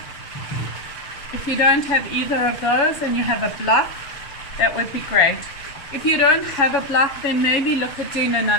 If you don't have either of those and you have a block, that would be great. If you don't have a block, then maybe look at doing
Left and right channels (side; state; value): right; late; 7.1 ms